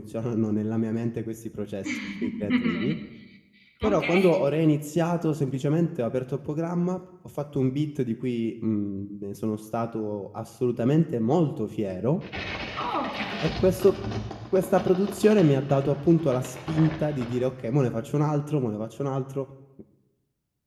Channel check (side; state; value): both; identical; correlation 1.00